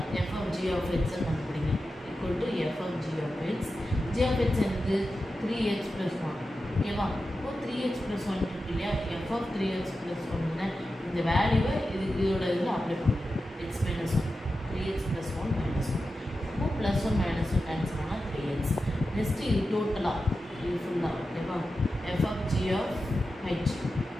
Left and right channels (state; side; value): normal; both; correlation 0.91